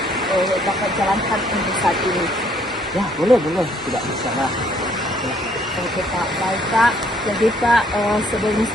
Bapak jalankan untuk saat ini? Ya, boleh, tidak masalah. Oke Pak, baik Pak. Jadi Pak, sebelum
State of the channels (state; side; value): normal; both; correlation 0.65